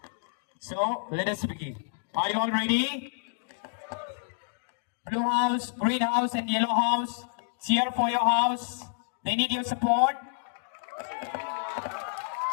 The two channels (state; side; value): silent; right; digital silence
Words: So, let us begin. Are you all ready? Blue house, green house, and yellow house, cheer for your house. They need your support.